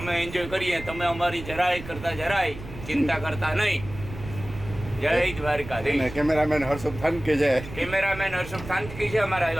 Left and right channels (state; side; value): noise; right; rumble, 12 dB below the sound